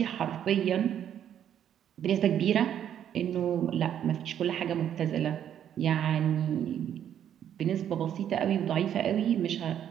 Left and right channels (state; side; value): quieter; left; 9.8 dB